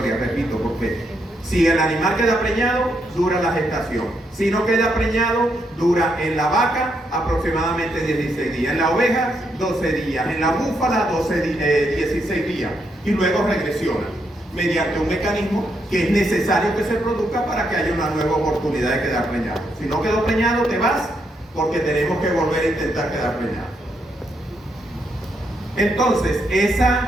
repito, porque si el animal queda preñado, dura la gestación. Si no queda preñado, dura en la vaca aproximadamente 16 días, en la oveja 12 días, en la búfala 16 días y luego regresiona mediante un mecanismo que es necesario que se produzca para que haya una nueva oportunidad de quedar preñado. Si no quedó preñado, te vas porque tenemos que volver a intentar quedar preñado. Entonces,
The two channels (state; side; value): normal; both; correlation 0.78